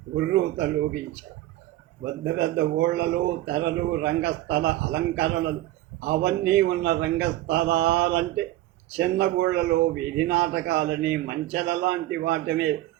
ఉర్రూతలోగించాయి. పెద్ద పెద్ద ఊళ్ళలో తెరలు, రంగస్థల అలంకరణలు అవన్నీ ఉన్న రంగస్థలాలంటే చిన్న ఊళ్ళలో వీధి నాటకాలని, మంచెల లాంటి వాటినే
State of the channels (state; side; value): quieter; left; 15.7 dB